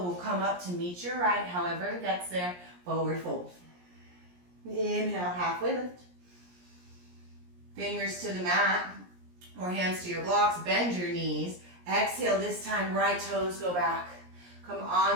will come up to meet your right. However it gets there, forward fold. Inhale, halfway lift. Fingers to the mat or hands to your blocks. Bend your knees. Exhale, this time right toes go back. Come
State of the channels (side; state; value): left; late; 17 ms